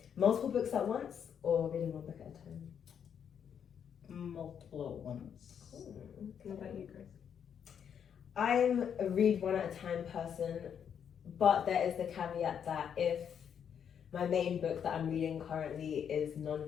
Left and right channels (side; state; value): right; quieter; 8.1 dB